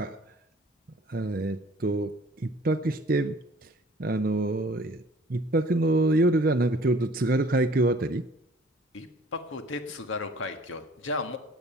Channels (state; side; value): normal; both; correlation 0.53